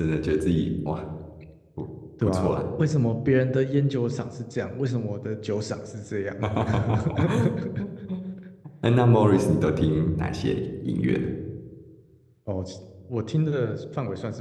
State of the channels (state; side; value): identical; both; correlation 1.00